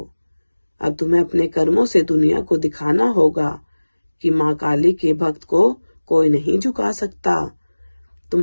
अब तुम्हें अपने कर्मों से दुनिया को दिखाना होगा कि माँ काली के भक्त को कोई नहीं झुका सकता।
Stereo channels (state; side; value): inverted; both; correlation -1.00